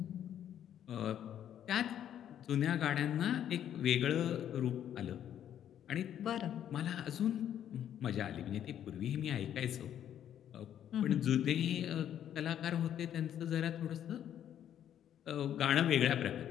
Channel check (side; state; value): right; quieter; 10.3 dB